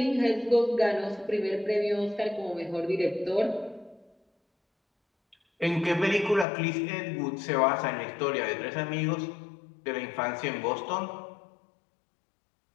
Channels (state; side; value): drops out; right; at 6.5 s